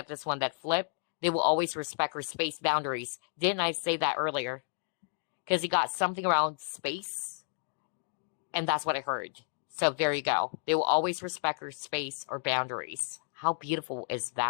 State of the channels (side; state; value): right; silent; digital silence